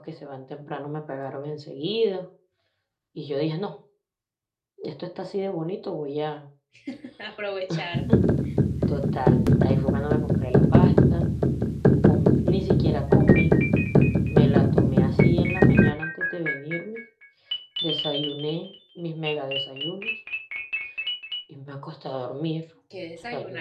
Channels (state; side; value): identical; both; correlation 1.00